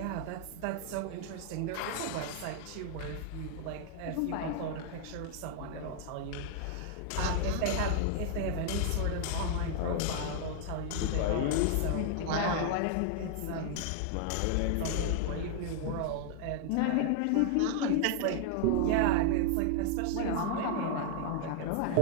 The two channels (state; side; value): different; both; correlation 0.00